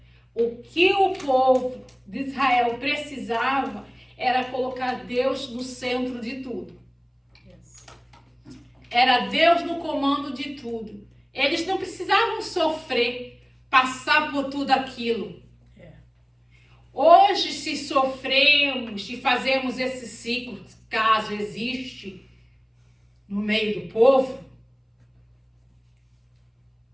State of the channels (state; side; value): identical; both; correlation 1.00